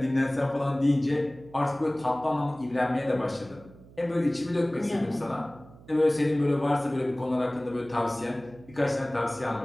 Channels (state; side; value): noise; right; hum, 22 dB below the sound